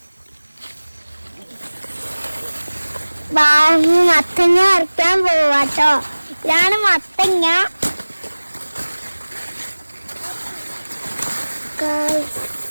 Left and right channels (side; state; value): both; inverted; correlation -1.00